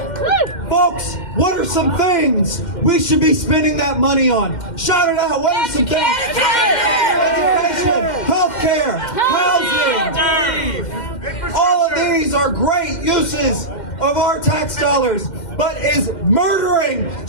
Folks, what are some things we should be spending that money on? Shout it out. What are some things? Education, healthcare, housing. All of these are great uses of our tax dollars. But is murdering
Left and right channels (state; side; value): late; right; 2.1 ms